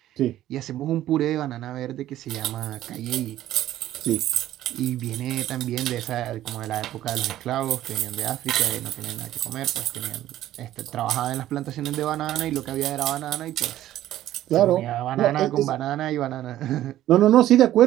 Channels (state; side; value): quieter; left; 13.4 dB